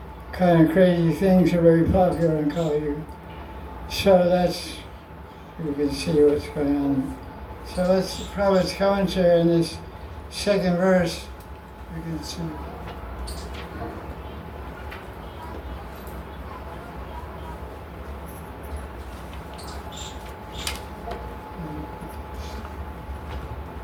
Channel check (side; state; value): both; identical; correlation 1.00